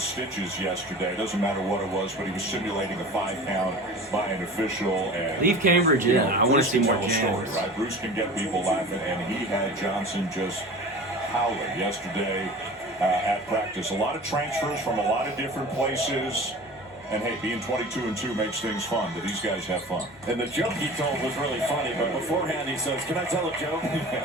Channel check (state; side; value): normal; both; correlation 0.37